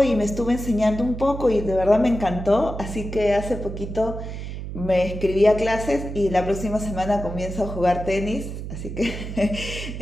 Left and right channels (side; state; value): right; noise; hum, 7 dB below the sound